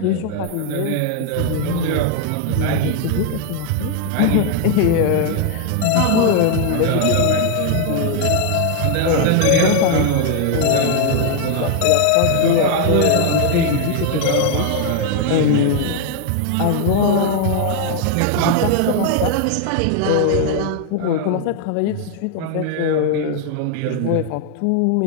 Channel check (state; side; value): different; both; correlation 0.00